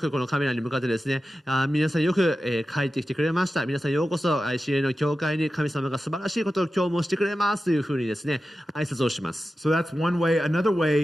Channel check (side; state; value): both; normal; correlation 0.93